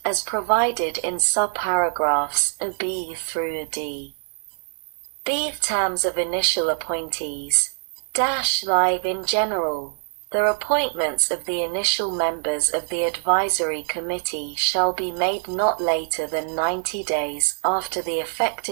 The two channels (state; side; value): silent; left; digital silence